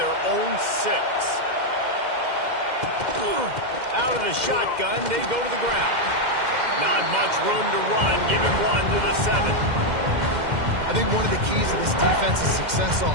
own 6. Out of the shotgun, they go to the ground. Not much room to run. Give him 1 to the 7. I think one of the keys to this defense's success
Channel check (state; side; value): late; left; 2.1 ms